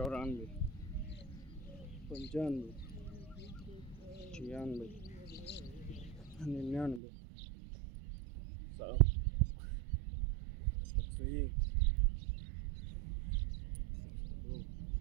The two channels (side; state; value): left; drops out; at 7.0 s